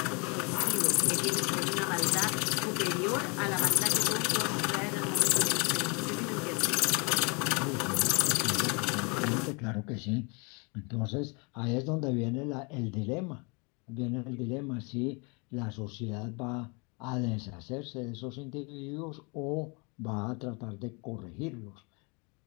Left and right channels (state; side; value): quieter; right; 31.7 dB